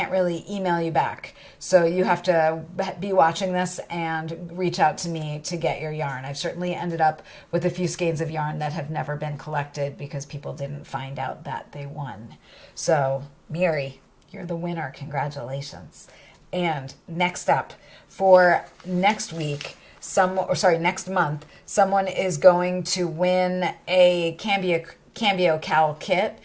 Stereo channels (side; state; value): both; identical; correlation 1.00